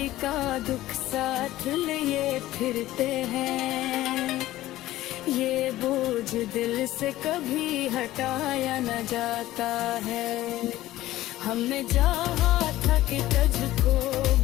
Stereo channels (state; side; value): quieter; right; 15.6 dB